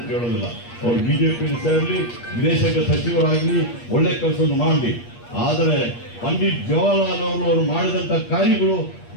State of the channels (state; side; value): late; right; 8.4 ms